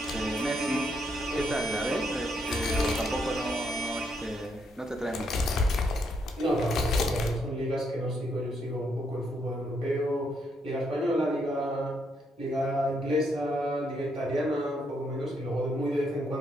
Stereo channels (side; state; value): both; normal; correlation 0.76